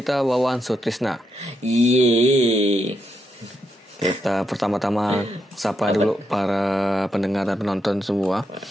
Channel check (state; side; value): normal; both; correlation 0.82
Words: Wawan Sutrisna. Yeay. Kita pertama-tama sapa dulu para pendengar dan penonton semua.